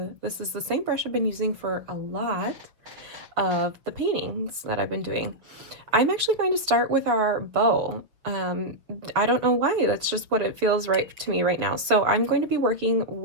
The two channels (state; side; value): late; left; 6.9 ms